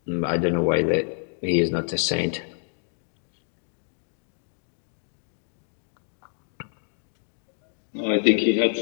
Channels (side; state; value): right; silent; digital silence